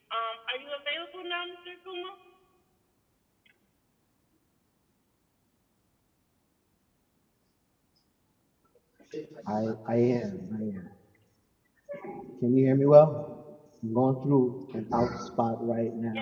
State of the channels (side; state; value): both; identical; correlation 1.00